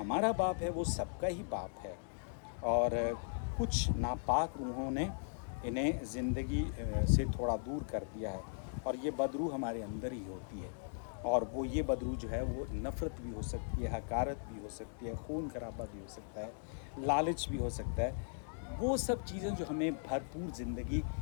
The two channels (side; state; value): right; silent; digital silence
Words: باپ ہے وہ سب کا ہی باپ ہے. اور کچھ ناپاک روحوں نے انہیں زندگی سے تھوڑا دور کر دیا ہے، اور یہ بدروح ہمارے اندر ہی ہوتی ہے. اور وہ یہ بدروح جو ہے وہ نفرت بھی ہو سکتی ہے، حقارت بھی ہو سکتی ہے، خون خرابہ بھی ہو سکتا ہے، لالچ بھی ہو سکتا ہے. وہ سب چیزیں جو ہمیں بھرپور زندگی